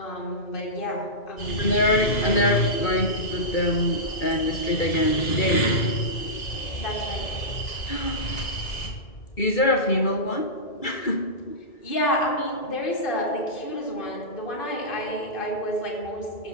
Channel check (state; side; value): late; right; 2.3 ms